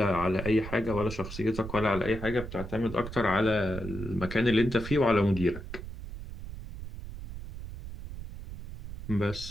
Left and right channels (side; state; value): right; noise; rumble, 10 dB below the sound